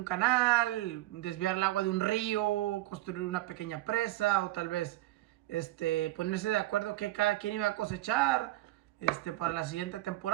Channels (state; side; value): quieter; left; 17.0 dB